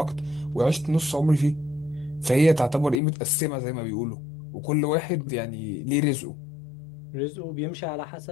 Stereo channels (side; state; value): right; drops out; at 3.0 s